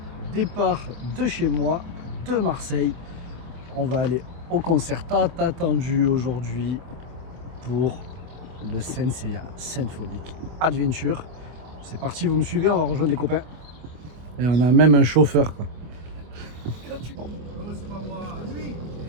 départ de chez moi, de Marseille. On va aller au concert tant attendu aujourd'hui pour le Senseiya Symphonic Adventure. C'est parti, vous me suivez, on va rejoindre les copains. Et on a même un chauffeur quoi.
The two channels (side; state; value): left; late; 24 ms